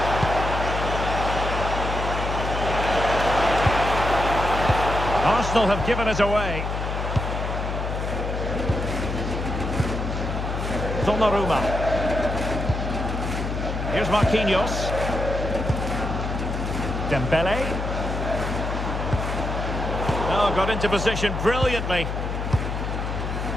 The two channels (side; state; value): left; noise; hum, 3 dB below the sound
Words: Arsenal have given it away. Donnarumma. Here's Marquinhos. Dembele. Oh, got into position brilliantly.